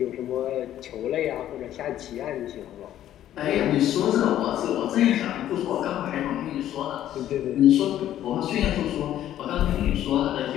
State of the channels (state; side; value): quieter; right; 12.0 dB